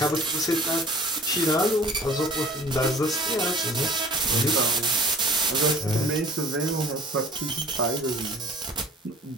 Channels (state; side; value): normal; both; correlation 0.46